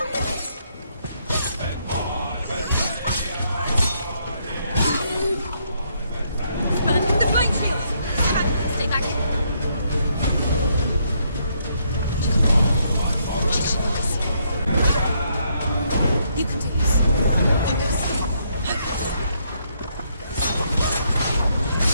Burn the flame shield. Stay back. You can do this. Focus.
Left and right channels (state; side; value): inverted; both; correlation -0.73